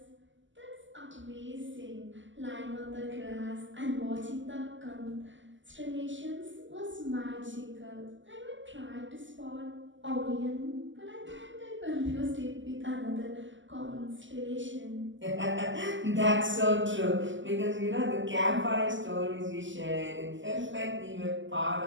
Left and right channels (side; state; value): left; late; 0.55 ms